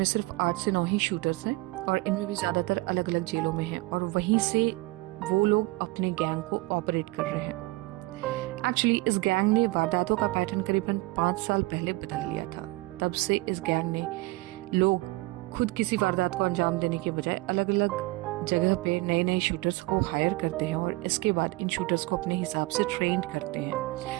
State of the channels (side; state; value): left; quieter; 21.7 dB